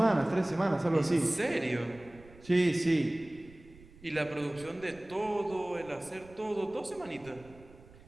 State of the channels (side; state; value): right; noise; rumble, 22 dB below the sound